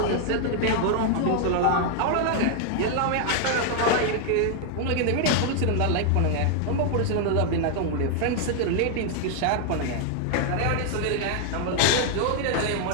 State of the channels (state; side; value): different; both; correlation 0.00